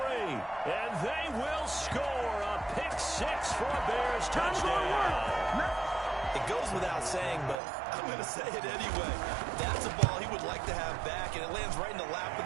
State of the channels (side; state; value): left; drops out; at 7.6 s